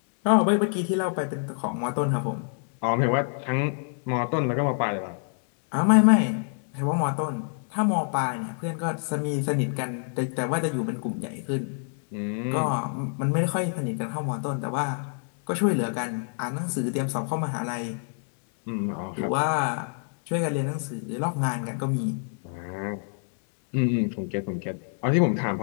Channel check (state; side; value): silent; right; 60 dB below the other